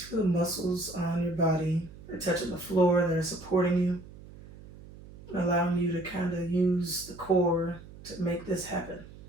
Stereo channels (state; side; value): noise; right; hum, 18 dB below the sound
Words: feel the muscles on your body or touching the floor that are supporting you, allowing you to kind of use the core to make this happen.